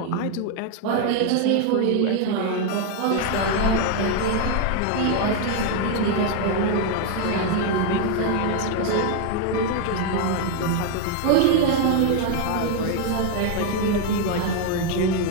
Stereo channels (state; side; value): different; both; correlation 0.01